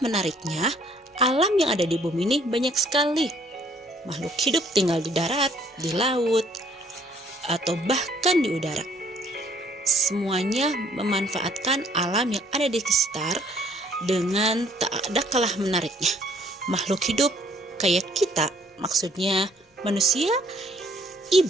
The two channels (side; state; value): both; normal; correlation 0.62